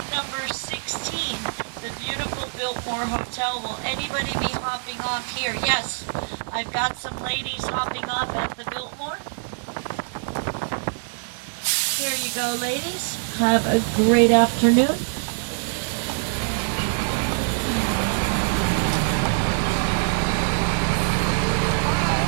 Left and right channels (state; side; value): silent; left; digital silence